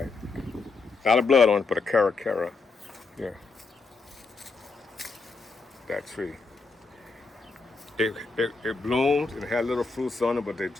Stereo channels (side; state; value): right; quieter; 4.1 dB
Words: Not a blood on it, but a cara. Here. That tree. It bloomed and it had little fruits on it, but they